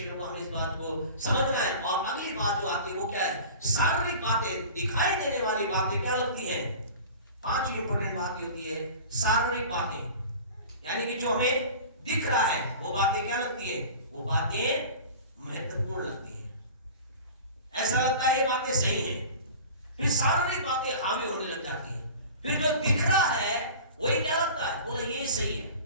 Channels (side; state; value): both; inverted; correlation -0.39